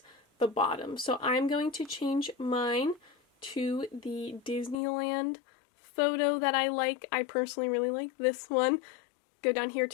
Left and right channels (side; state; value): right; drops out; at 4.8 s